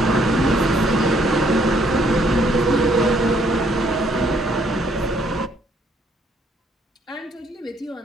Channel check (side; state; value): both; normal; correlation 0.67